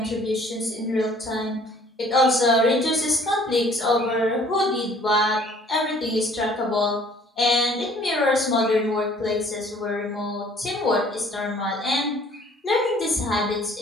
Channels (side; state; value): both; normal; correlation 0.55